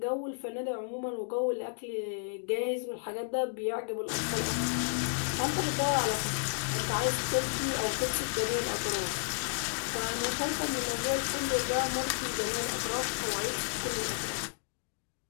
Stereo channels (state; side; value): silent; right; digital silence